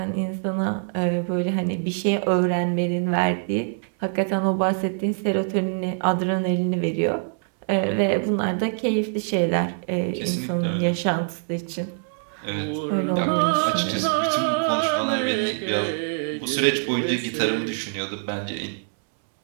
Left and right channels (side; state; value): left; silent; 62 dB below the other